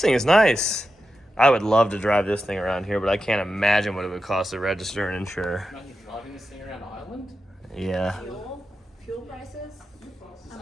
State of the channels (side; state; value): both; normal; correlation 0.90